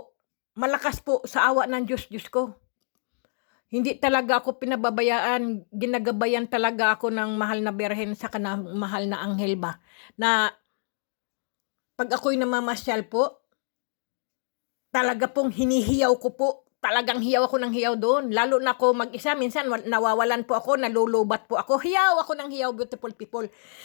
malakas po sa awa ng Diyos ko. Hindi talaga ako pinababayaan, ginagabayan talaga ako ng mahal na Birhen sa kanang mahal na anghel ba. Na pag ako'y namamasyal po, talaga pong hinihiyaw ko po. Talagang hiyaw ako ng hiyaw doon. Lalo na ako mag-isa. Minsan nawawalan po ako, nalulubat po ako. Hiyaw ako ng hiyaw, beautiful people.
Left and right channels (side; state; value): right; silent; digital silence